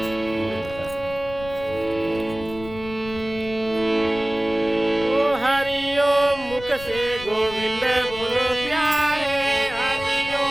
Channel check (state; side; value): noise; left; rumble, 15 dB below the sound